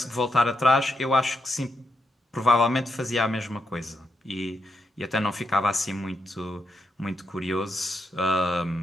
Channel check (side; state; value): both; normal; correlation 0.82